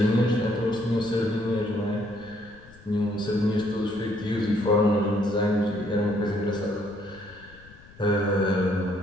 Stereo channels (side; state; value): left; noise; rumble, 23 dB below the sound